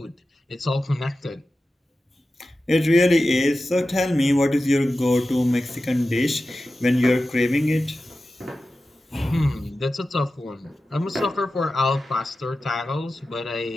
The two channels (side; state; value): both; normal; correlation 0.93